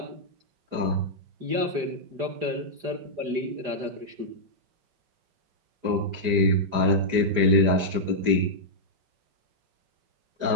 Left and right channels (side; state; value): left; late; 4.9 ms